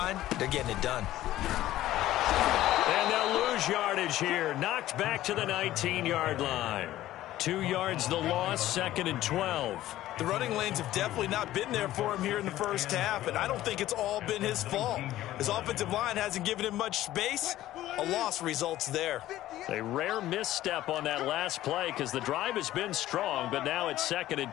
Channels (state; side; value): quieter; right; 14.5 dB